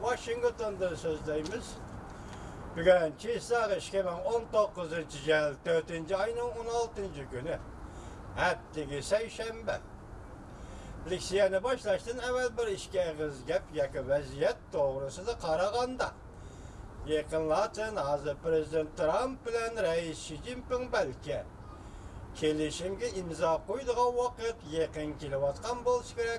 sözdeyimiz. Bugün Çiğsağ 2019 yıl 4. ayının 16. günü. Haftaki Seyşembe. Leksiyeni başlaştın evvel bir işke gap yakı vaziyet doğrusu da Karaganda. Yakınlatın hazır Prezident Trump ile Reis Xi Jinping belki kelişimge imza koyduğu vakit yakın kilovatkan bolsa gerek.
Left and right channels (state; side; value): identical; both; correlation 1.00